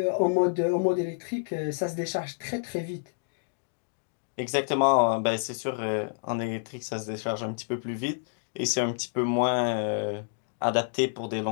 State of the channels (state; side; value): silent; right; digital silence